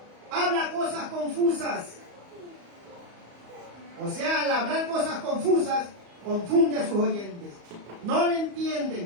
habla cosas confusas. O sea, al hablar cosas confusas, confunde a sus oyentes. No le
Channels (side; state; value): left; late; 34 ms